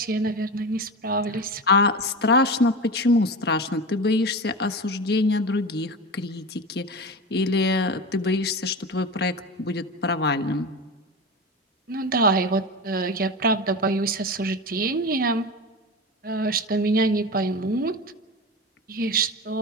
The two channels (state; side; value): normal; both; correlation 0.25